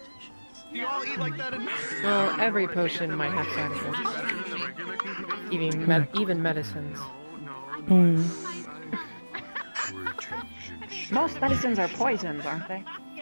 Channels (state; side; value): inverted; both; correlation -1.00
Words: Well, every potion might have side effects. Even medicines. Most medicines are poisons, aren't they?